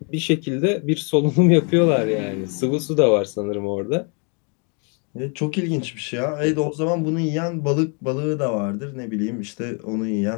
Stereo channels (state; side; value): quieter; right; 36.8 dB